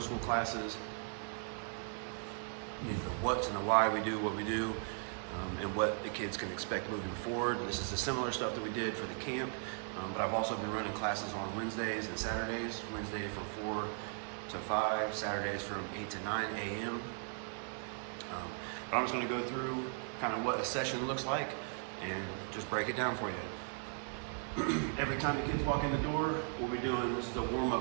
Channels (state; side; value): silent; left; 53 dB below the other